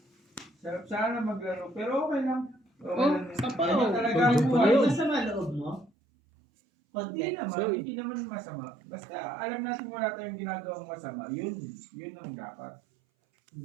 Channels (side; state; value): left; drops out; at 5.9 s